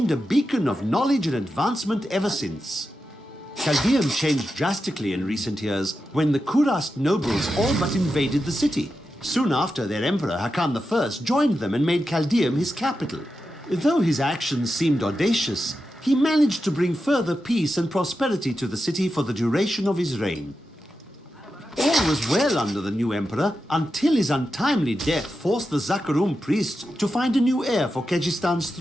a beacon of knowledge and advancement ever since. Chaldeum changed drastically in recent years when the Kurast nobles all but invaded the city. Soon after, their emperor Hakan I joined them and made Chaldeum his capital. Though his actions seemed audacious, he managed to bring further peace and prosperity to the city for the duration of his reign. All was well under the new emperor until his untimely death forced the Zakarum priests to find a new heir for Kejistan's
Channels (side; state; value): both; normal; correlation 0.89